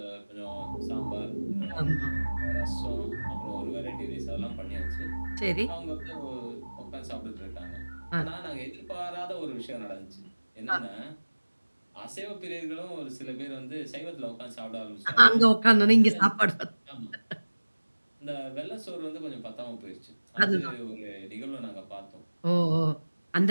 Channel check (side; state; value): both; inverted; correlation -1.00